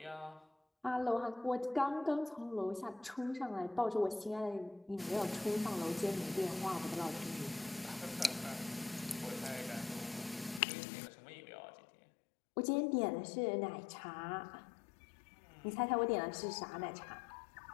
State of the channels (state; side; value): drops out; right; at 10.6 s